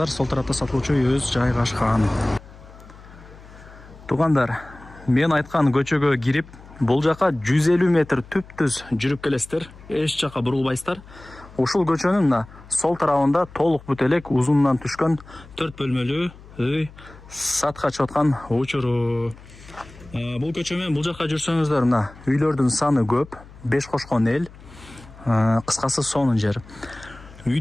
сол тарапта сатылуучу үйүбүз жайгашкан. Тугандар, мен айткан көчөгө кирип, бул жака 150 метр түп-түз жүрүп келесиздер. Эч жака бурулбайсыздар. Ушул көчөнүн мына сол тарабында толук бүт элек узунунан түшкөн 4 бөлмөлүү үй сатка чыгып аткан учуру. Бул көчө менен бул жака жүрсөңүздөр, мына үйлөрдүн саны көп, 5 кошкон эл. Кыскасы сонун жер.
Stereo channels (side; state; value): left; noise; hum, 20 dB below the sound